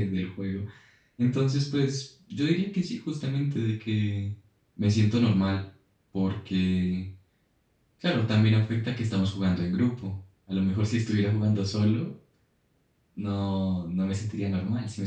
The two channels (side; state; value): both; identical; correlation 1.00